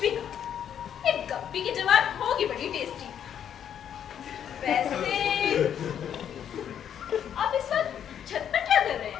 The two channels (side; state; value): right; quieter; 9.2 dB